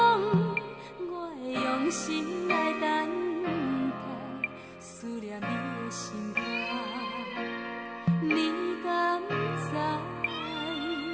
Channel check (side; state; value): both; identical; correlation 1.00